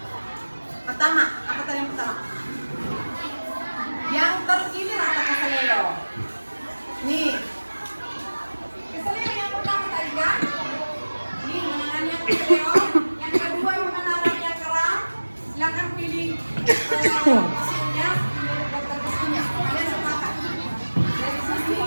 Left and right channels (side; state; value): both; inverted; correlation -1.00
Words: pertama. Apa tadi yang pertama? Yang terpilih atau keseleo? Nih, keseleo yang pertama tadi kan? Nih menangani yang keseleo. Yang kedua menangani yang keram. Silakan pilih pasiennya, pilih dokter pasiennya. Kalian sepakat? Dari sini